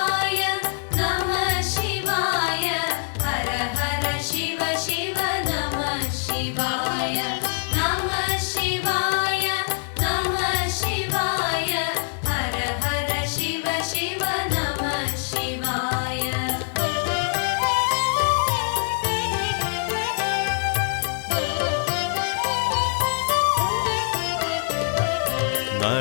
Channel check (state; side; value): silent; right; 63 dB below the other